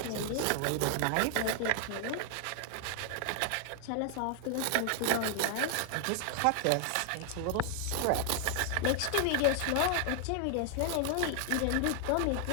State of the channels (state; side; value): different; both; correlation 0.00